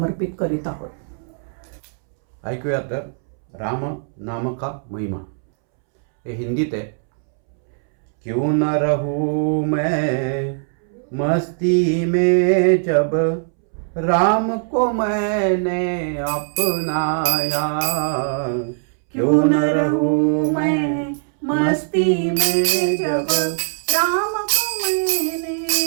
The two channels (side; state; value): left; silent; 65 dB below the other